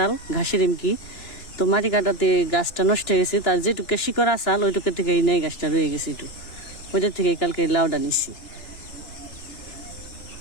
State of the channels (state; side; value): late; right; 2.9 ms